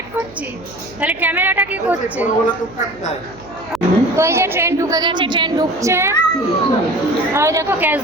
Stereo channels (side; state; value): right; noise; hum, 22 dB below the sound